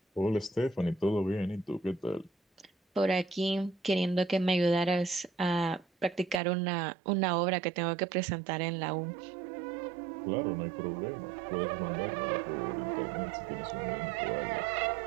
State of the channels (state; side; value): drops out; left; at 6.4 s